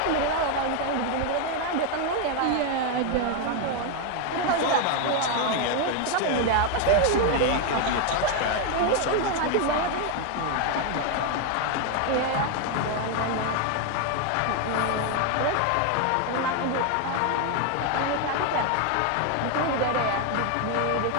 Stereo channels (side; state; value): both; different; correlation 0.01